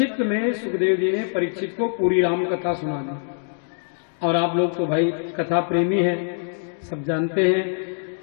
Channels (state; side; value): silent; right; digital silence